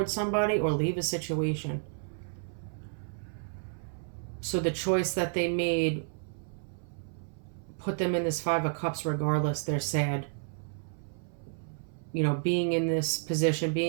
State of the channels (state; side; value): silent; left; 57 dB below the other